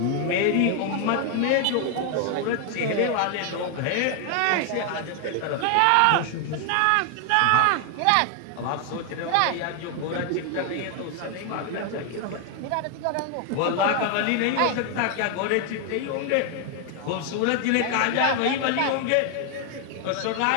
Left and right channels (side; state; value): both; different; correlation 0.00